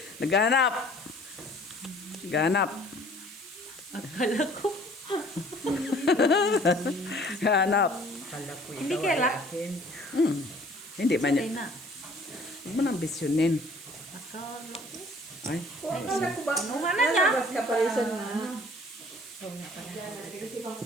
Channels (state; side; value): noise; right; hiss, 17 dB below the sound